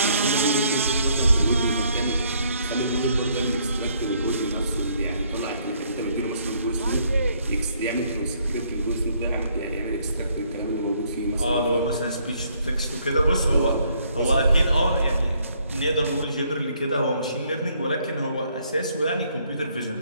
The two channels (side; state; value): both; inverted; correlation -0.67